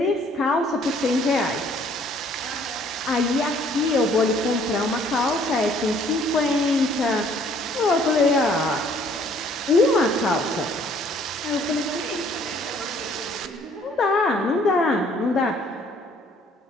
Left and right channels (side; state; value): both; normal; correlation 0.60